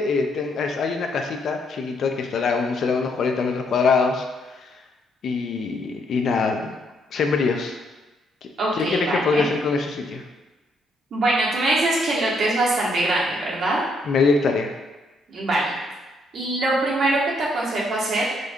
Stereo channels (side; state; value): both; normal; correlation 0.73